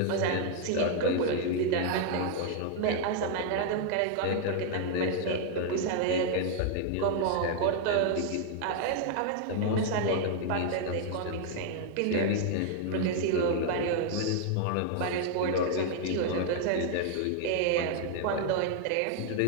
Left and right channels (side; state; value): both; different; correlation 0.00